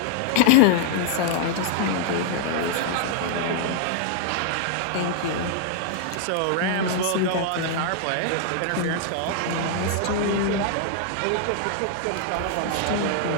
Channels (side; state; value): both; different; correlation 0.00